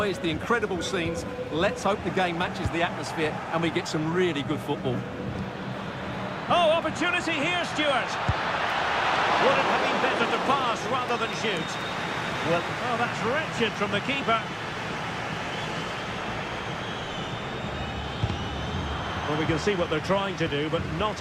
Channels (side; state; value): both; identical; correlation 1.00